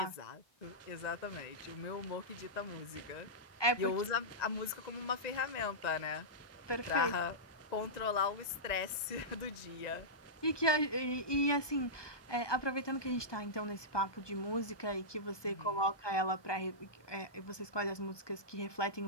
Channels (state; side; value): late; right; 1.2 ms